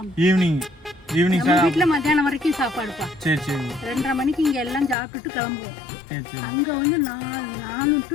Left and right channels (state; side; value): drops out; right; at 5.0 s